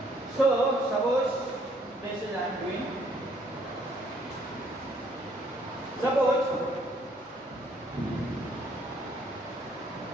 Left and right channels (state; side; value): normal; both; correlation 0.65